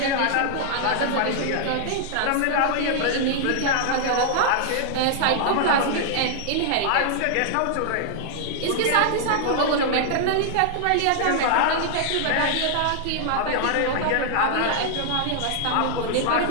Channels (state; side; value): different; both; correlation -0.01